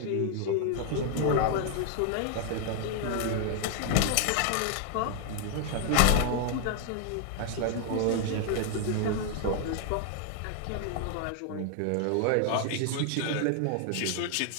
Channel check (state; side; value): different; both; correlation 0.00